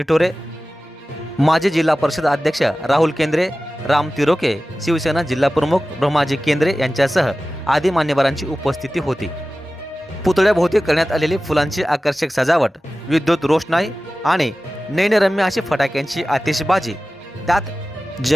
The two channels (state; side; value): normal; both; correlation 0.96